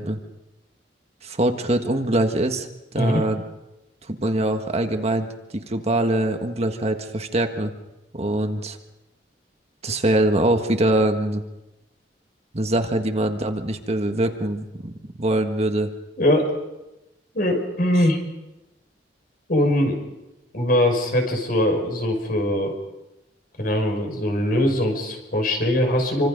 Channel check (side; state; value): both; normal; correlation 0.55